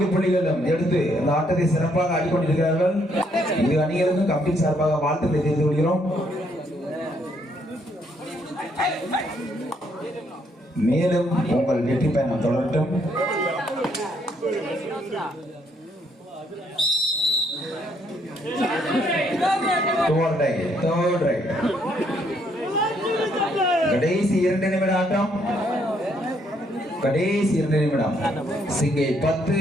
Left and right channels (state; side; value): normal; both; correlation 0.71